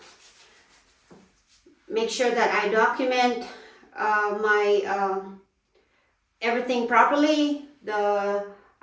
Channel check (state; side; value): identical; both; correlation 1.00